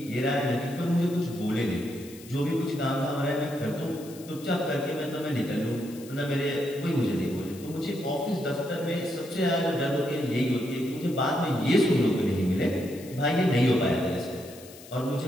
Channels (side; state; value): left; noise; hiss, 19 dB below the sound